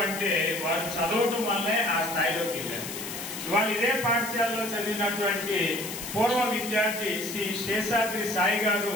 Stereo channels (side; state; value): left; noise; hiss, 8 dB below the sound